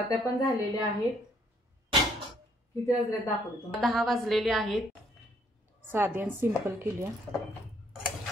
पण झालेल्या आहेत. किती वाजले दाखवते तुम्हाला. 10 वाजलेले आहेत. साधी आणि सिंपल केली आहे.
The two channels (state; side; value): normal; both; correlation 0.67